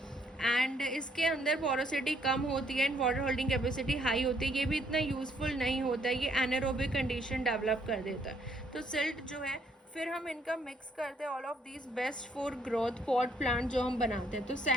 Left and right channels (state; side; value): normal; both; correlation 0.68